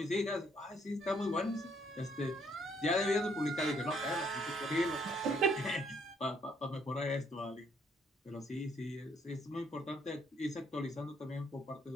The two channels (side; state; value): both; normal; correlation 0.67